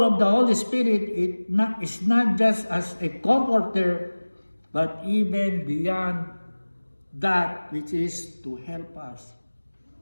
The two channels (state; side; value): inverted; both; correlation -1.00